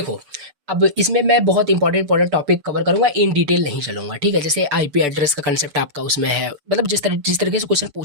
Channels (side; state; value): left; late; 6.9 ms